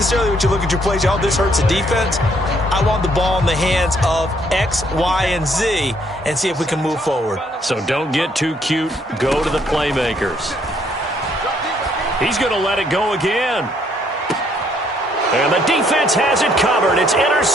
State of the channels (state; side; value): normal; both; correlation 0.68